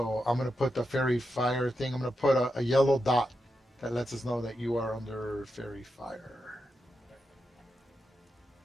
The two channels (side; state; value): both; normal; correlation 0.87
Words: I'm going to put the Fairy Fire thing. I'm going to put a yellow dot that lets us know that you are under Fairy Fire.